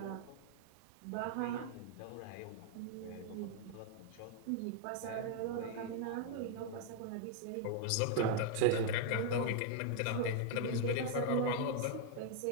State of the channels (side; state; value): both; different; correlation 0.00